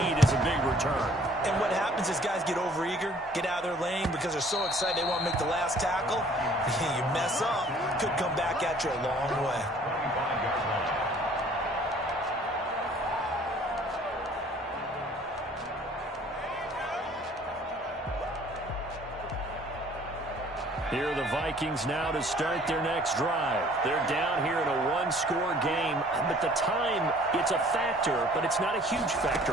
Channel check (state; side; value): normal; both; correlation 0.55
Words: is a big return. And what happens is guys get overeager, get out of their lane because they're so excited they want to make the last tackle. You mess up, could come back at you a long way. Here are the Vikings now to start their next drive. They're down here in a one-score game, but the time, it's a factor, but it's not a huge